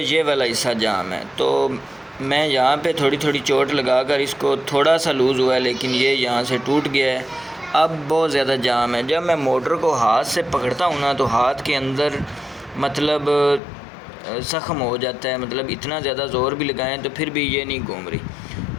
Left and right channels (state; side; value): drops out; right; at 13.6 s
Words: والا حصہ جام ہے، تو میں یہاں پہ تھوڑی تھوڑی چوٹ لگا کر اس کو تھوڑا سا لوز ہوا ہے، لیکن یہ یہاں سے ٹوٹ گیا ہے، اب بہت زیادہ جام ہے۔ جب میں موٹر کو ہاتھ سے پکڑتا ہوں نا تو ہاتھ کے اندر مطلب زخم ہو جاتا ہے، مطلب اتنا زیادہ زور بھی لگائیں تو پھر بھی یہ نہیں گھوم رہی۔